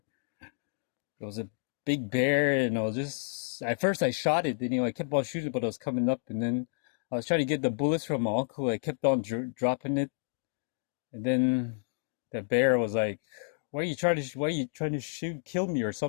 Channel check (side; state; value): right; silent; digital silence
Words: There was a big bear, and I was just at first I shot it. And, I kept on shooting, but it was coming up, and then I was trying to get the bullets from my uncle. I kept on dropping it, and then the bear was like, "Why are you trying to kill me or